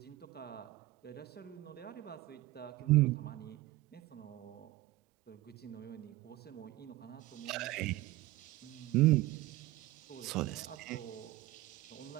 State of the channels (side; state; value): left; quieter; 17.5 dB